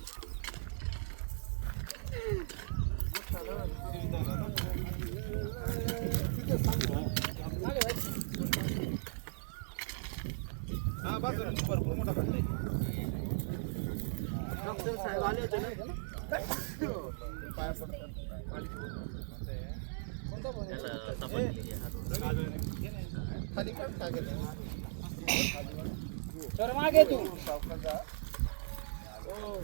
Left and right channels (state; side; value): silent; left; digital silence